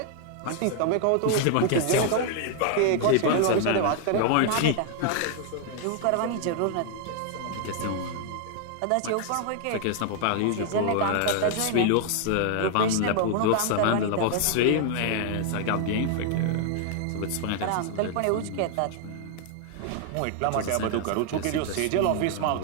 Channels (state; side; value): different; both; correlation 0.00